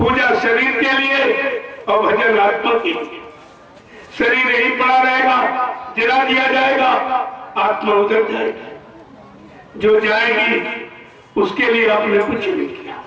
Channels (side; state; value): both; identical; correlation 1.00